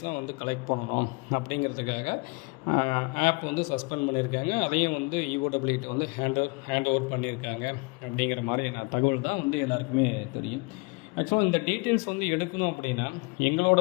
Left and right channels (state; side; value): quieter; right; 29.4 dB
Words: கலெக்ட் பண்ணணும். அப்படிங்கிறதுக்காக ஆப் சஸ்பெண்ட் பண்ணியிருக்காங்க. அதையும் EOW ஹேண்ட் ஓவர் பண்ணியிருக்காங்க. அப்படிங்கிற மாதிரி தகவல் தான் எல்லாருக்குமே தெரியும். ஆக்சுவலாக இந்த டீட்டெயில்ஸ் எடுக்கணும் அப்படின்னா, எங்களோட